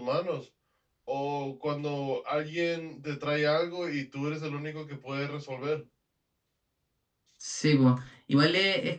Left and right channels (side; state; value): both; identical; correlation 1.00